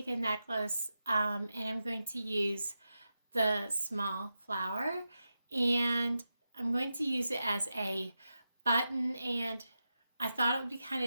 a necklace, and I'm going to use the small flower, and I'm going to use it as a button, and I thought it would be kind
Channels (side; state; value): both; inverted; correlation -0.89